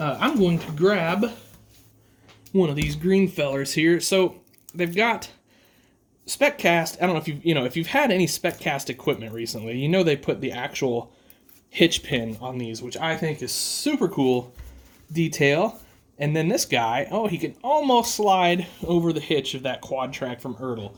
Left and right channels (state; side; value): identical; both; correlation 1.00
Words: going to grab one of these green fellers here. So they've got SpecCast. I don't know if you've had any SpecCast equipment recently. You know they put the actual hitch pin on these, which I think is super cool detail. And then this guy, he can almost slide over the hitch of that quad track from Ertl.